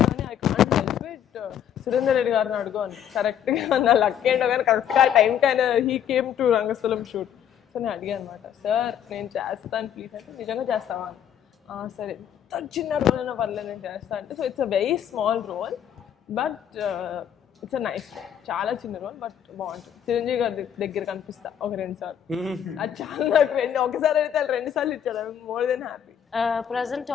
కానీ I can't help it, Surender Reddy గారిని అడుగు అని. కరెక్ట్గా నా లక్ ఏంటో కానీ కరెక్ట్గా టైంకి ఆయన he came to Rangasthalam shoot. So నేను అడిగాను అనమాట, సార్ నేను చేస్తాను ప్లీజ్ అంటే, నిజంగా చేస్తావా అని. సరే, ఎంత చిన్న రోల్ అయినా పర్లేదు నేను చేస్తాను అంటే. So it's a very small role but it's a nice role, చాలా చిన్న రోల్ బట్ బాగుంటుంది. చిరంజీవి గారి దగ్గర కనిపిస్తా ఒక 2 సార్లు, అది చాలా నాకు ఒకసారి అయితే 2 సార్లు ఇచ్చాడు, I more than happy. Present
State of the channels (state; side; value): quieter; right; 9.4 dB